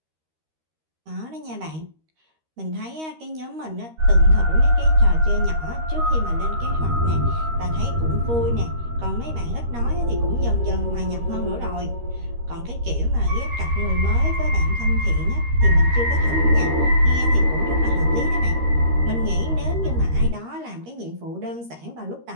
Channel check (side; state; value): left; late; 13 ms